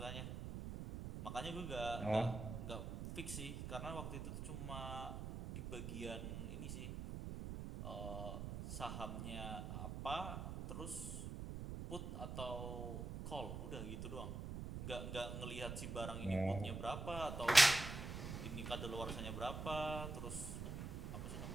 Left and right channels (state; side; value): noise; right; rumble, 5 dB below the sound